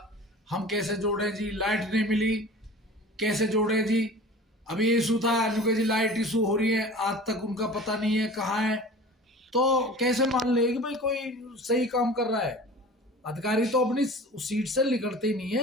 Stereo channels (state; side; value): normal; both; correlation 0.40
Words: हम कैसे जोड़ें जी, लाइट नहीं मिली कैसे जोड़ें जी। अभी इशू था अनुके जी, लाइट इशू हो रही है, आज तक उनका पता नहीं है कहाँ है। तो कैसे मान ले कि भाई कोई सही काम कर रहा है? अधिकारी तो अपनी सीट से निकलते ही नहीं